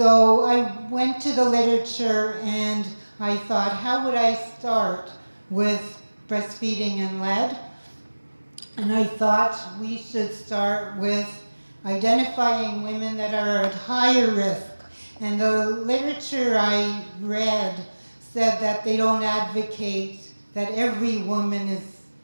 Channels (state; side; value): inverted; both; correlation -1.00